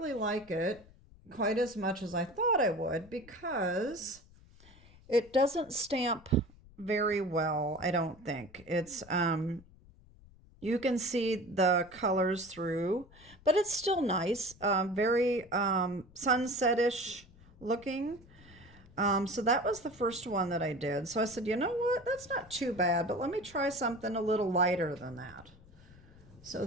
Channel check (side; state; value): left; noise; rumble, 24 dB below the sound